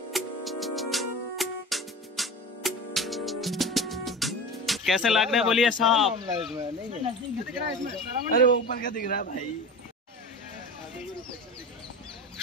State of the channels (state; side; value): normal; both; correlation 0.30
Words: कैसे लग रहा है बोलिए साहब? अरे वो ऊपर क्या दिख रहा है भाई?